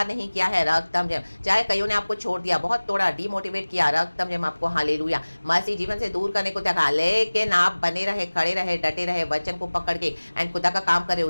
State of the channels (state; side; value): inverted; both; correlation -1.00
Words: नहीं किया है। रक्तम जयम। चाहे कईयों ने आपको छोड़ दिया, बहुत तोड़ा, डिमोटिवेट किया, रक्तम जयम आपको हालेलुया मसीह जीवन से दूर करने को देखा, लेकिन आप बने रहे, खड़े रहे, डटे रहे, वचन को पकड़ के एंड खुदा का काम कर रहे